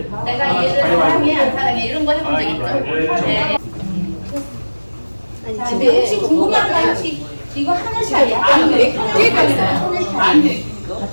내가 얘를 사랑해 안 사랑해 이런 거 해본 적 있죠? 네. 자, 근데 혹시 궁금한 거 혹시 이거 하늘샤예요? 아니, 하늘샤가 있어요. 하늘샤.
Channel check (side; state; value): both; inverted; correlation -1.00